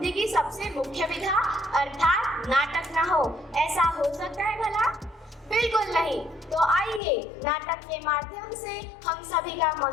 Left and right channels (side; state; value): right; drops out; at 7.0 s